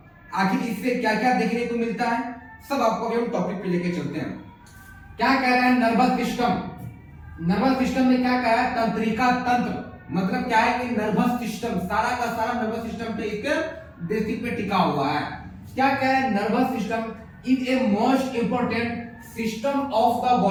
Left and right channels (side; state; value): both; identical; correlation 1.00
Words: आखिर इससे क्या क्या देखने को मिलता है सब आपको हम टॉपिक पे लेके चलते हैं। क्या कह रहा है नर्वस सिस्टम। नर्वस सिस्टम में क्या कह रहा है, तंत्रिका तंत्र। मतलब क्या है कि नर्वस सिस्टम सारा का सारा नर्वस सिस्टम पे एक बेसिक पे टिका हुआ है। क्या कह रहा है, nervous system is a most important system of the